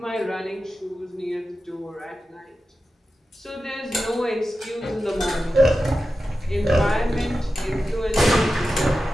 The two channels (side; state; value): both; normal; correlation 0.92